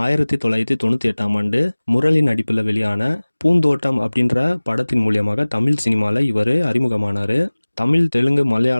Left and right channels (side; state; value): both; inverted; correlation -1.00